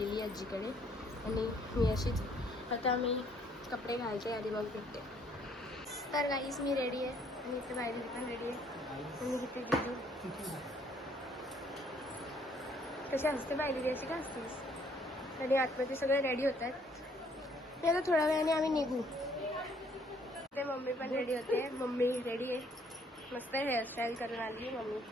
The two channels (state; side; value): normal; both; correlation 0.64